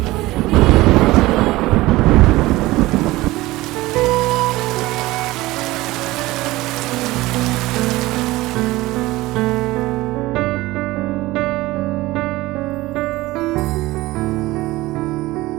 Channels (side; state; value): left; quieter; 18.9 dB